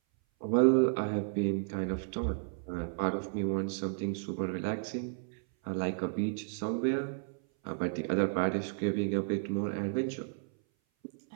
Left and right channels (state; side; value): silent; left; 56 dB below the other